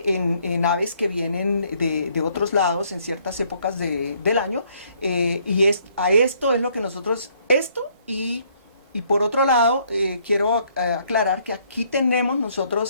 en aves que vienen de otros lados en ciertas épocas del año, a esto es lo que nosotros, y por otro lado, quiero aclarar que aquí tenemos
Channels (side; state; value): both; inverted; correlation -0.67